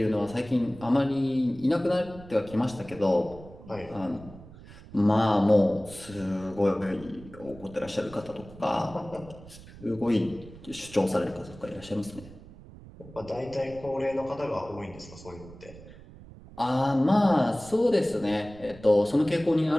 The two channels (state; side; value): noise; right; rumble, 18 dB below the sound